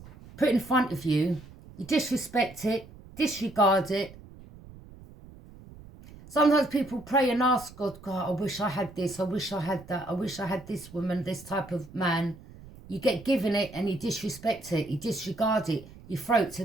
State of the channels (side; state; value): right; noise; rumble, 19 dB below the sound